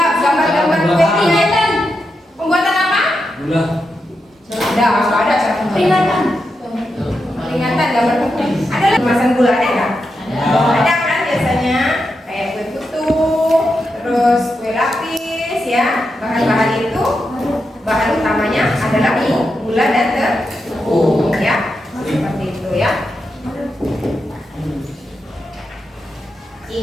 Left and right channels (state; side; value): normal; both; correlation 0.86